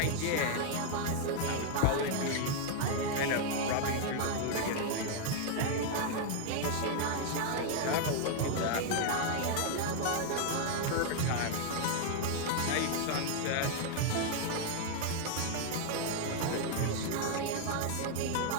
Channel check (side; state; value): both; different; correlation 0.00